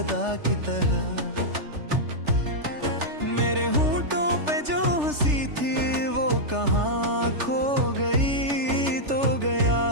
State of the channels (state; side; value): late; left; 3.4 ms